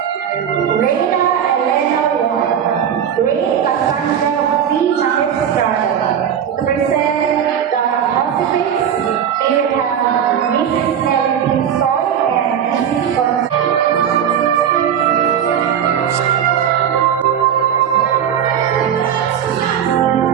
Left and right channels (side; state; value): left; quieter; 8.8 dB